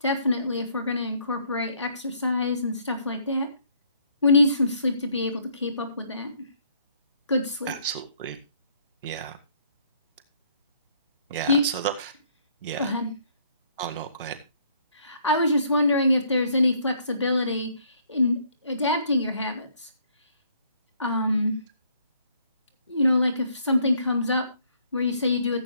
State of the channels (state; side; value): inverted; both; correlation -0.65